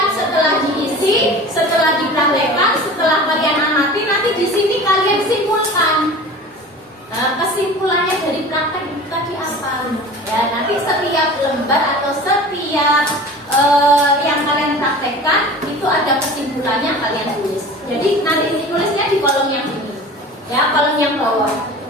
praktekkan, setelah kalian amati, nanti di sini kalian simpulkan. Kesimpulannya dari praktek itu tadi apa? Ya, nanti setiap lembar atau setiap yang kalian praktekkan itu ada kesimpulannya, kalian tulis. Jadi nanti tulisnya di kolom yang ini, ya, kolom yang bawah.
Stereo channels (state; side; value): normal; both; correlation 0.38